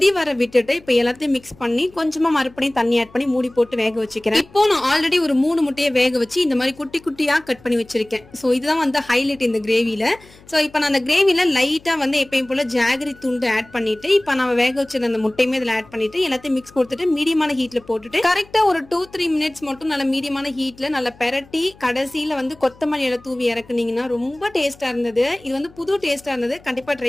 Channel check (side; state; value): left; noise; hum, 25 dB below the sound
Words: வர விட்டுட்டு இப்ப எல்லாத்தையும் மிக்ஸ் பண்ணி கொஞ்சமா மறுபடியும் தண்ணி ஆட் பண்ணி மூடி போட்டு வேக வச்சுக்கிறேன். இப்போ நான் ஆல்ரெடி ஒரு 3 முட்டையை வேக வச்சு இந்த மாதிரி குட்டி குட்டியா கட் பண்ணி வச்சிருக்கேன். ஸோ இதுதான் வந்து ஹைலைட் இந்த கிரேவில. ஸோ இப்போ நான் அந்த கிரேவில லைட்டா வந்து எப்பயும் போல ஜாகரி துண்டு ஆட் பண்ணிட்டு, இப்போ நம்ம வேக வச்சிருந்த அந்த முட்டையுமே இதுல ஆட் பண்ணிட்டு எல்லாத்தையும் மிக்ஸ் கொடுத்துட்டு மீடியமான ஹீட்ல போட்டுட்டு கரெக்டா ஒரு 2-3 மினிட்ஸ் மட்டும் நல்ல மீடியமான ஹீட்ல நல்லா பெரட்டி கடைசியில வந்து கொத்தமல்லி இலை தூவி இறக்குனீங்கன்னா ரொம்ப டேஸ்டா இருந்தது. இது வந்து புது டேஸ்டா இருந்தது. கண்டிப்பா